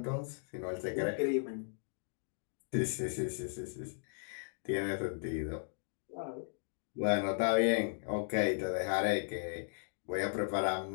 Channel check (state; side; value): silent; right; digital silence